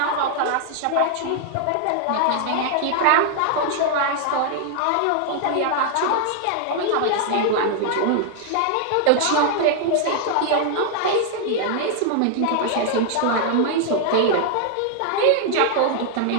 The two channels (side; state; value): both; different; correlation 0.00